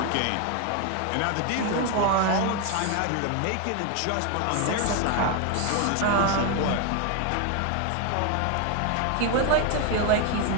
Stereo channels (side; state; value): both; different; correlation 0.01